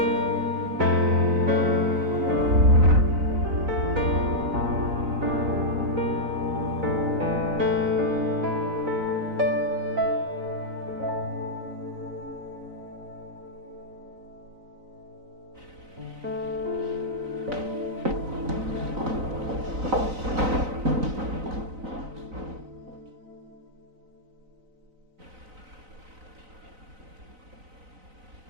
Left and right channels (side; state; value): left; late; 3.9 ms